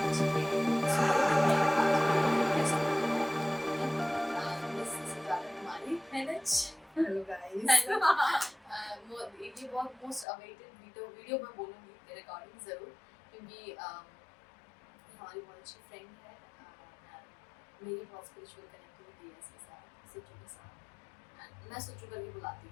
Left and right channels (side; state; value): right; drops out; at 10.2 s